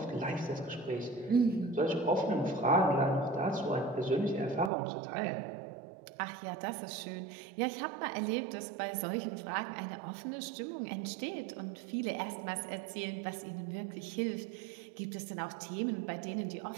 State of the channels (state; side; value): drops out; left; at 4.7 s